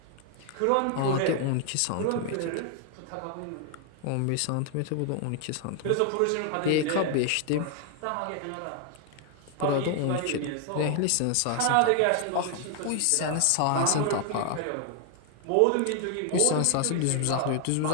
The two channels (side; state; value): both; different; correlation 0.00